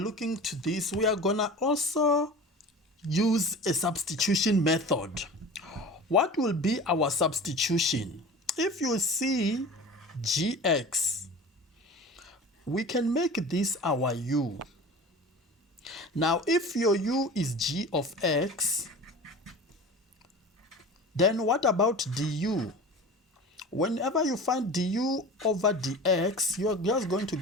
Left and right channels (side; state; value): both; normal; correlation 0.36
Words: to this, we are gonna also use a substitution method. What will be our substitution? If you see gx, we can make this our u. Now if your u is g of x, then what about du? Whenever you find du over dx, you're just going to